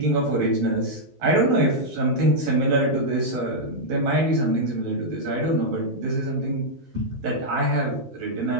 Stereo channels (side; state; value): left; late; 12 ms